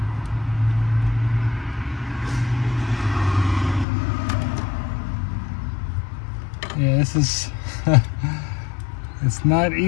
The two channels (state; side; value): drops out; right; at 3.9 s